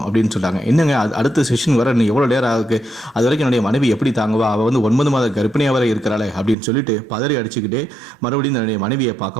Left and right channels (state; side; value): drops out; left; at 6.6 s